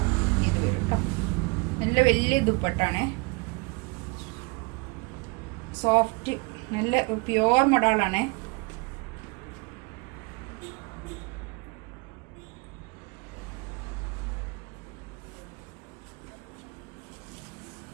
ഇത് വരും കേട്ടോ. നല്ല വലിയ ദുപ്പട്ടാണ്, സോഫ്റ്റ്, നല്ല പ്യുവർ മൊഡാളാണ്.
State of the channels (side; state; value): left; quieter; 28.6 dB